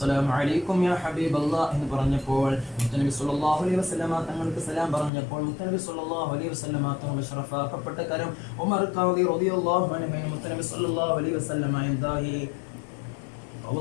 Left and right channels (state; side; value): drops out; right; at 5.1 s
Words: അലൈക്കും യാ ഹബീബല്ലാഹ് എന്ന് പറഞ്ഞപ്പോൾ മുത്തനബി സല്ലല്ലാഹു അലൈഹി വസല്ലമ തങ്ങൾക്ക് സലാം പറഞ്ഞപ്പോൾ മുത്തനബി സല്ലല്ലാഹു അലൈഹി വസല്ലമ തങ്ങൾ ശറഫാക്കപ്പെട്ട കരം ഉമർ ഖാദി റളിയല്ലാഹു അൻഹു മുത്തനബി സല്ലല്ലാഹു അലൈഹി വസല്ലമ എന്തായി